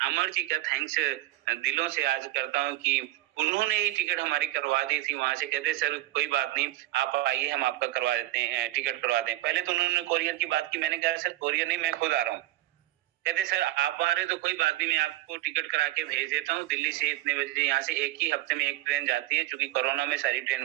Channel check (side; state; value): left; quieter; 16.2 dB